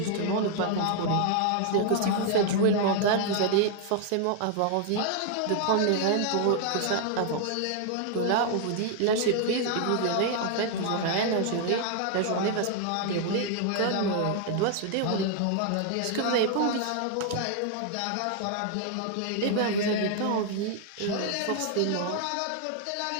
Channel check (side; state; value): both; different; correlation 0.00